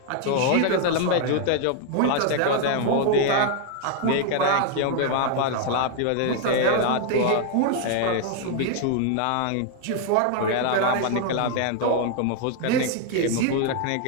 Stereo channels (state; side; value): different; both; correlation 0.00